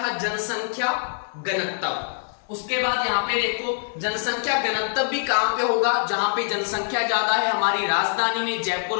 था, जनसंख्या घनत्व। उसके बाद यहाँ पे देखो जनसंख्या घनत्व भी कहां पे होगा, जहां पे जनसंख्या ज्यादा है, हमारी राजधानी में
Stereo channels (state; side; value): silent; right; 62 dB below the other